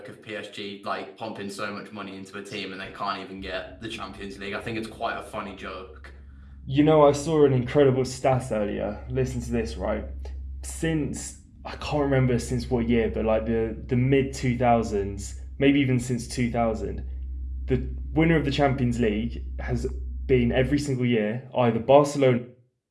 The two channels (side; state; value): both; identical; correlation 1.00